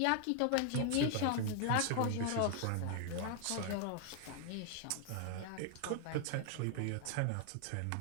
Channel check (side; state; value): both; different; correlation 0.00